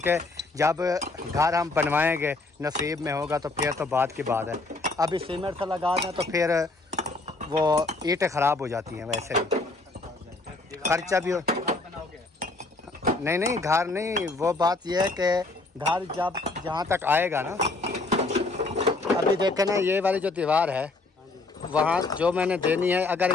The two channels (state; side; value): quieter; right; 3.3 dB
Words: जब घर हम बनवाएंगे नसीब में होगा तो फिर तो बात की बात है। अभी सीमेंट से लगा दें तो फिर वो ईंटें ख़राब हो जाती हैं, वैसे भी खर्चा भी हो। नहीं, घर नहीं, वो बात यह है कि घर जब जहाँ तक आएगा ना, अभी देखें ना, ये वाली जो दीवार है वहाँ जो मैंने देनी है, अगर